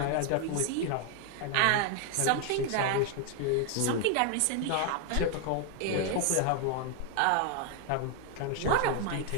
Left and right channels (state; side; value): different; both; correlation 0.00